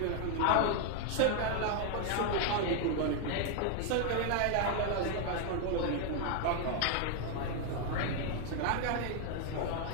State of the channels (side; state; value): both; different; correlation 0.01